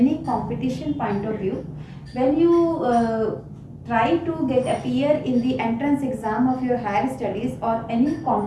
competition point of view. When you try to get appear in the entrance exam of your higher studies or any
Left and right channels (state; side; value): identical; both; correlation 1.00